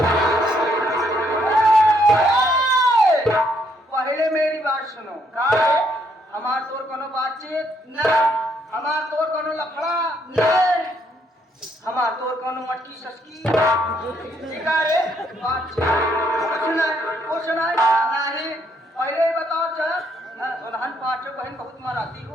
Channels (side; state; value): both; normal; correlation 0.71